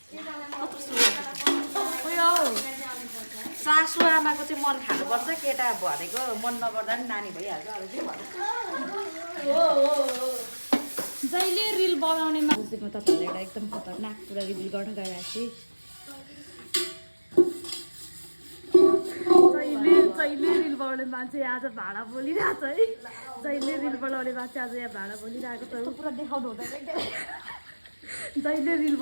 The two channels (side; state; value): both; inverted; correlation -1.00